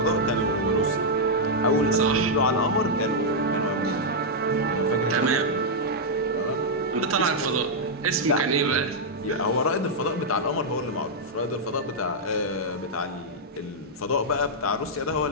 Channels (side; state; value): both; normal; correlation -0.05